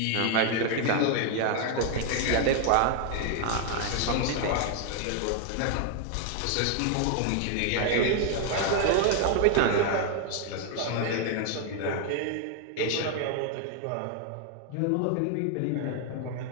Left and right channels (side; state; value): both; different; correlation 0.00